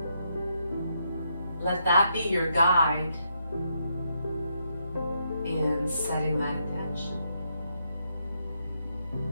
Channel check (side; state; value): both; inverted; correlation -0.79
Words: let that be your guide in setting that intention.